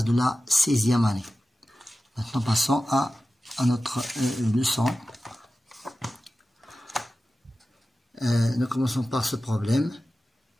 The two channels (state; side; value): normal; both; correlation 0.95